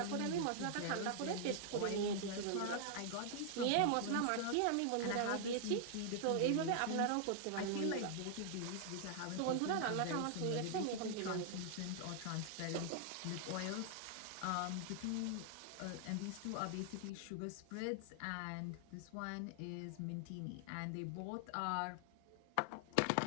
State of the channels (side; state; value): both; different; correlation 0.00